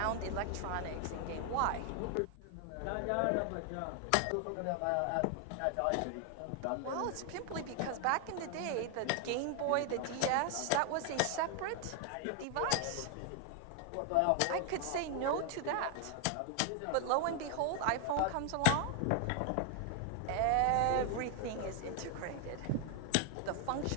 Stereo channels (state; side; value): different; both; correlation 0.00